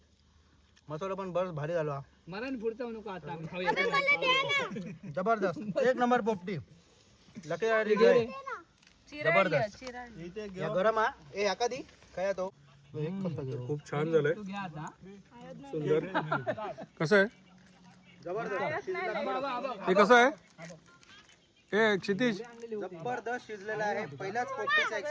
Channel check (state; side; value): identical; both; correlation 1.00